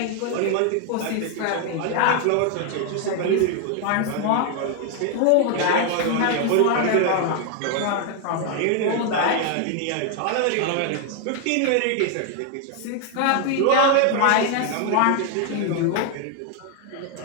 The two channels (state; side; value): different; both; correlation 0.01